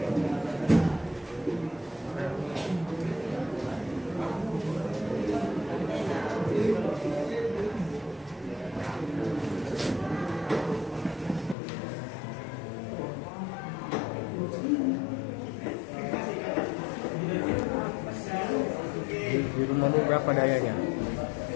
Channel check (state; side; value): drops out; right; at 11.6 s